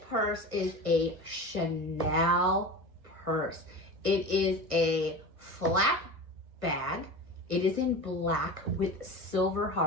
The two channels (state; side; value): late; left; 1.6 ms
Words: purse is a Chanel purse. It is a flap bag. It is in black with silver